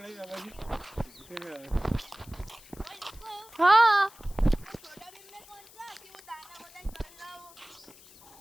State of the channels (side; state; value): left; noise; hiss, 22 dB below the sound